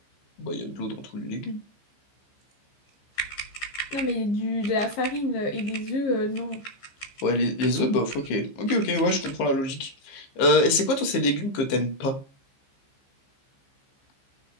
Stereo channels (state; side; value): late; right; 15 ms